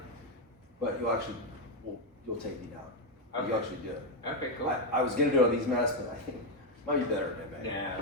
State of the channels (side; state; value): both; normal; correlation 0.04